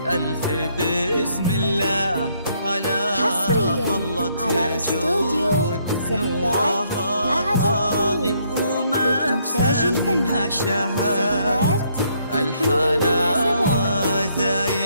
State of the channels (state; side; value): inverted; both; correlation -0.71